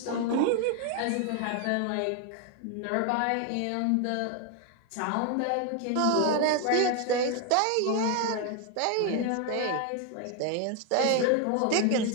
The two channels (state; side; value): different; both; correlation 0.01